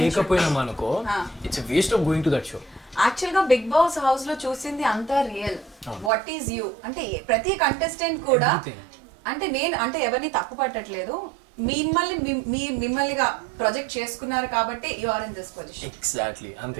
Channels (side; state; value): left; drops out; at 6.1 s